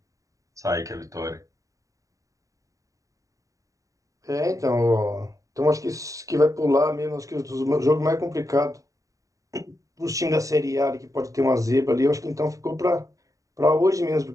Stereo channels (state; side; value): late; left; 0.16 ms